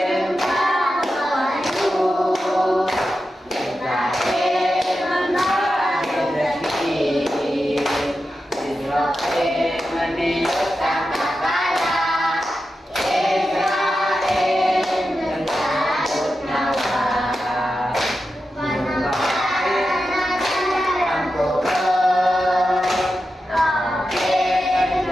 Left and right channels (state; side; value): normal; both; correlation 0.90